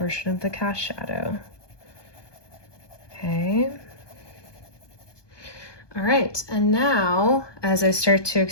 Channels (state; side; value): late; right; 1.2 ms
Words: of the cast shadow. Okay. All right, and now as I start to